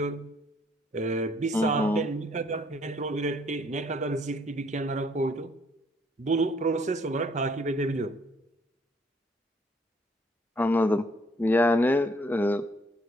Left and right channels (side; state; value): both; normal; correlation 0.64